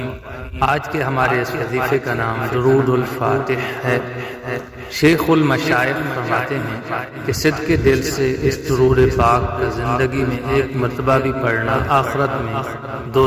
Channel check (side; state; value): both; identical; correlation 1.00